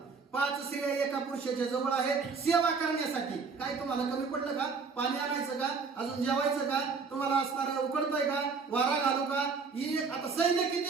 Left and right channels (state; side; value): quieter; left; 5.0 dB